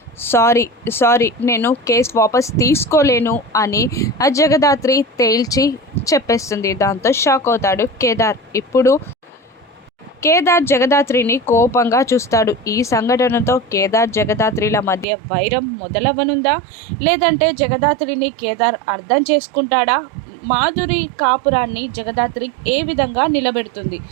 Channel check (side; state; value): left; drops out; at 15.1 s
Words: సారీ నేను కేసు వాపస్ తీసుకోలేను అని జగదాత్రి తేల్చి చెప్పేస్తుంది. దాంతో షాక్ అవుతాడు కేదార్. ఇప్పుడు కేదార్ జగదాత్రిని కోపంగా చూస్తాడు. ఈ సంఘటనతో కేదార్ జగదాత్రిల మధ్య వైరం మొదలవనుందా, లేదంటే జగదాత్రిని కేదార్ అర్థం చేసుకుంటాడా, మాధురి కాపురాన్ని జగదాత్రి ఏ విధంగా నిలబెడుతుంది,